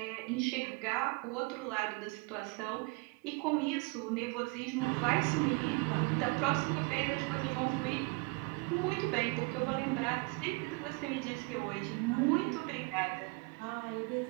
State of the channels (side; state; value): left; quieter; 28.9 dB